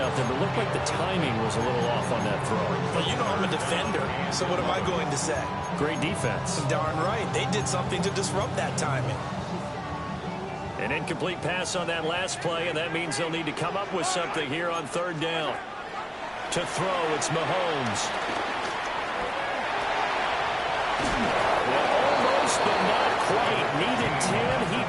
out there, but it looked like the timing was a little off on that throw. Well, you know I'm a defender, so what am I going to say? Great defense. Darn right. They did something to disrupt that timing. An incomplete pass on that last play, and that means they'll need to come up with something here on 3rd down. To throw, it's Mahomes. Well, almost, but not quite. Needed 10, he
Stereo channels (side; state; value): both; identical; correlation 1.00